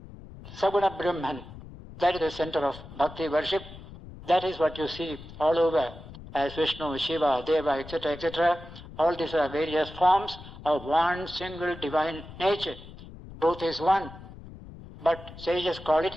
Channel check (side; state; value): left; noise; rumble, 16 dB below the sound